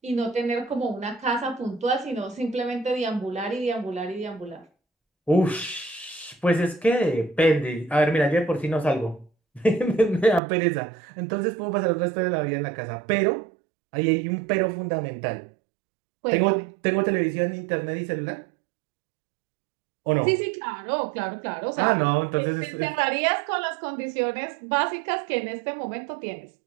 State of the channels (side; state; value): left; drops out; at 10.4 s